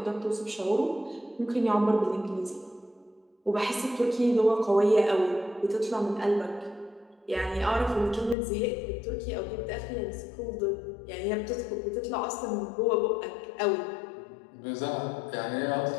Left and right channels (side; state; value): right; drops out; at 8.3 s